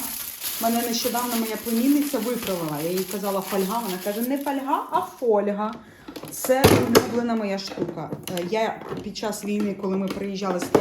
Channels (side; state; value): both; identical; correlation 1.00